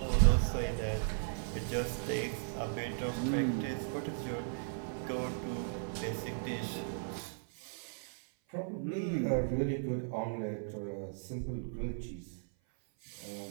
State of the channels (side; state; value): left; silent; 53 dB below the other